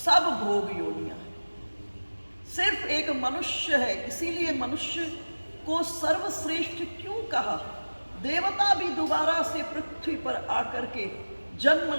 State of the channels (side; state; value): both; inverted; correlation -1.00